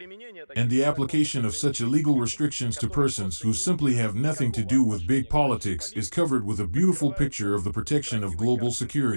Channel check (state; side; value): inverted; both; correlation -1.00